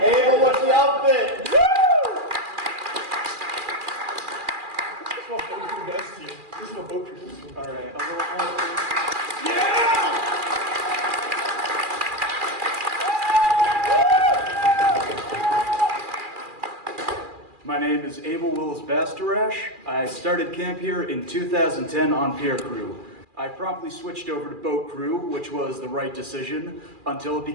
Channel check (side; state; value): left; late; 2.4 ms